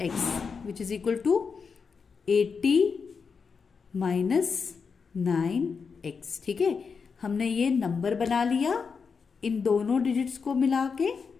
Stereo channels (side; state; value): right; quieter; 5.5 dB